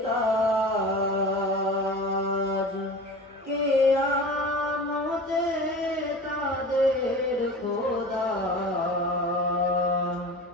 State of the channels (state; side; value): normal; both; correlation 0.35